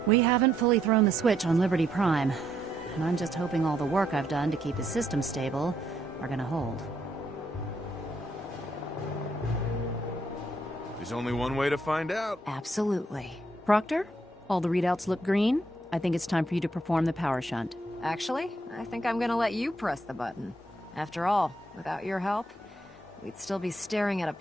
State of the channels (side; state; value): both; normal; correlation 0.74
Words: We haven't fully thrown the switch on Liberty Prime, and I'm just hoping all the work I've done to keep his system stable are gonna hold. There's only one way to find out. Absolutely. Proctor, all the readouts look green. I think it's time for you to perform the power shunt. Actually, I think I'm gonna let you press the button. After all, without your help, we'd still be staring at a